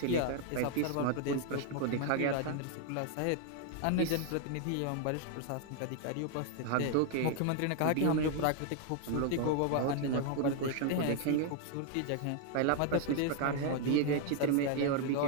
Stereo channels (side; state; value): both; different; correlation 0.00